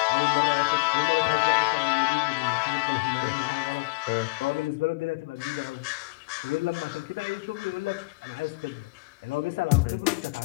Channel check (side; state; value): right; quieter; 27.2 dB